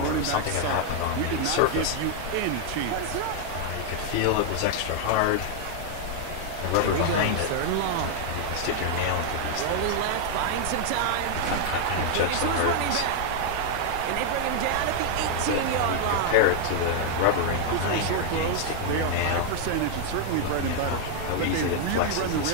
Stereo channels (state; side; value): different; both; correlation 0.00